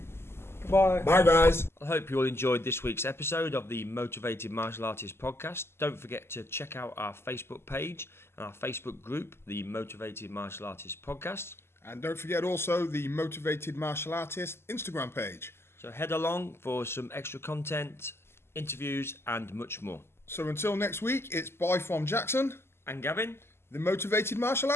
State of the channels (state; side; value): late; right; 0.12 ms